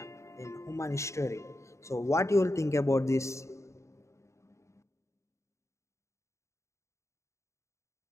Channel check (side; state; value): right; late; 0.14 ms